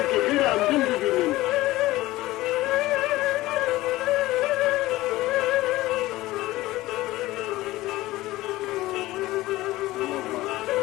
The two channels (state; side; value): quieter; right; 17.7 dB